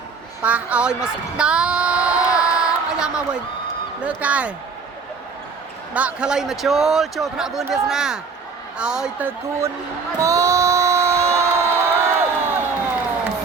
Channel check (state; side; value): quieter; left; 5.0 dB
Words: ប៉ះឲ្យមកស្ដាប់អាយ៉ាមកវិញលើកែដាក់ខ្លីមកចូលថ្នាក់វឿនវាសនាឲ្យទៅគួនមក